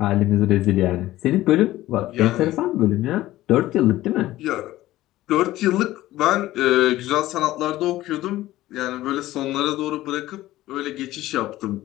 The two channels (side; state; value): right; quieter; 15.8 dB